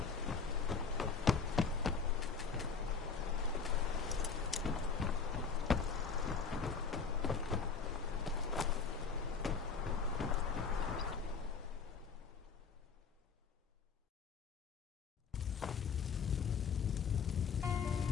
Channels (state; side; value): quieter; right; 5.5 dB